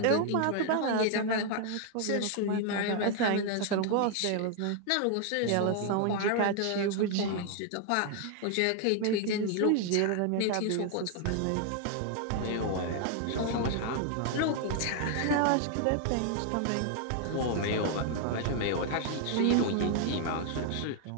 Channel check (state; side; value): different; both; correlation 0.00